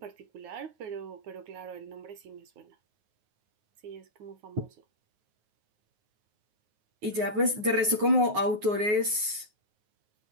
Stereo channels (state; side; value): late; left; 9.5 ms